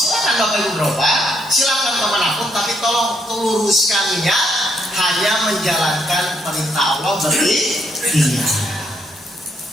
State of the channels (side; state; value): both; normal; correlation 0.74